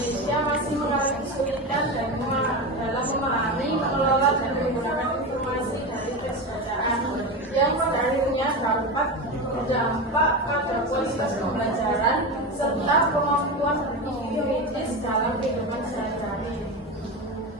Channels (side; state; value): both; normal; correlation 0.21